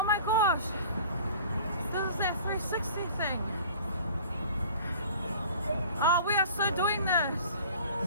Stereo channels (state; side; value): inverted; both; correlation -0.46